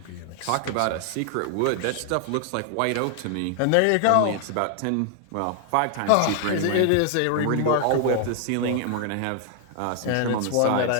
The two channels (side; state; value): both; different; correlation 0.00